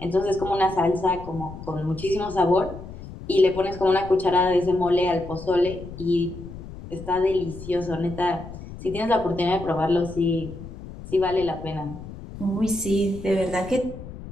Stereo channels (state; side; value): noise; left; rumble, 13 dB below the sound